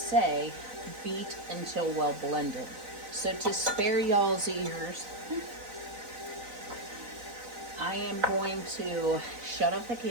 beat until well blended. So to spare y'all's ears, I am going to shut off the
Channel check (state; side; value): late; left; 4.0 ms